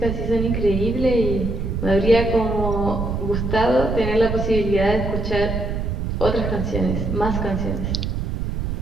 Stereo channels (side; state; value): right; noise; rumble, 2 dB below the sound